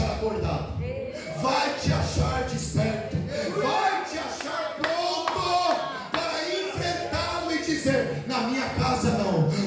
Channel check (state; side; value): identical; both; correlation 1.00